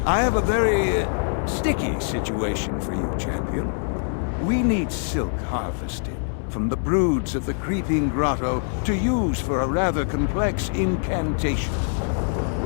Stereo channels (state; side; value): silent; right; 63 dB below the other